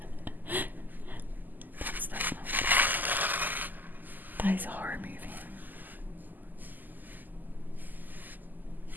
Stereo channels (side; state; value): left; late; 0.086 ms